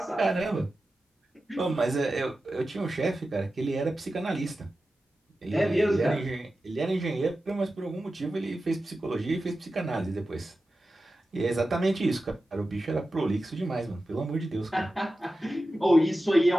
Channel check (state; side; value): normal; both; correlation 0.93